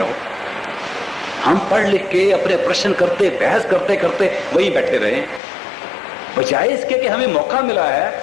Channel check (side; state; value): right; drops out; at 5.4 s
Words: हम पढ़ लिख के अपने प्रश्न करते, बहस करते करते वही बैठे रहे, बजाय इसके कि हमें मौका मिला है